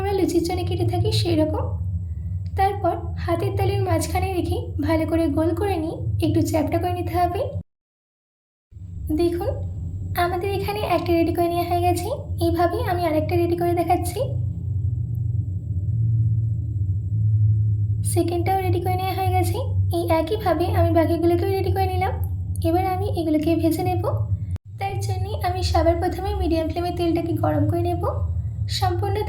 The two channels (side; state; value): both; identical; correlation 1.00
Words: লুচির জন্য কেটে থাকি সেই রকম। তারপর হাতের তালুর মাঝখানে রেখে ভালো করে গোল করে নিয়ে একটু চ্যাপ্টা করে নিতে হবে। দেখুন, আমাদের এখানে একটা রেডি করে নেওয়া হয়ে গেছে। এইভাবেই আমি আরেকটা রেডি করে দেখাচ্ছি। সেকেন্ডটাও রেডি করে নেওয়া হয়ে গেছে। এই একইভাবে আমি বাকিগুলোকেও রেডি করে নিলাম। এবার আমি এগুলোকে ভেজে নেব। তার জন্যে আমি সবার প্রথমে মিডিয়াম ফ্লেমে তেলটাকে গরম করে নেব। সম্পূর্ণ